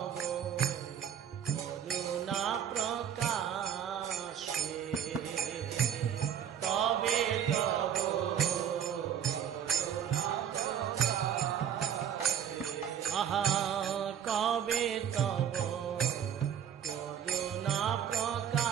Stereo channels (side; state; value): left; quieter; 8.9 dB